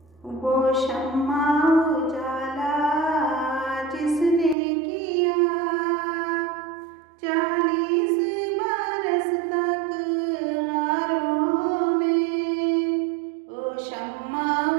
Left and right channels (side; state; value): left; drops out; at 4.5 s